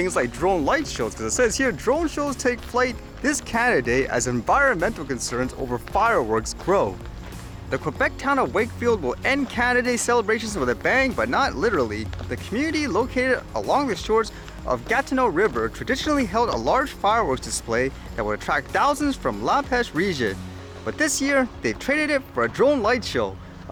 like drone light shows, because it says here drone shows take flight this Canada Day as environmental concerns over fireworks grow. The Quebec town of Wakefield will end Canada Day celebrations with a bang, but not literally. The community located along the shores of Gatineau River traditionally held a large fireworks display that would attract thousands from La Pêche region. But this year, they've traded it for a drone light show.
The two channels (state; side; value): identical; both; correlation 1.00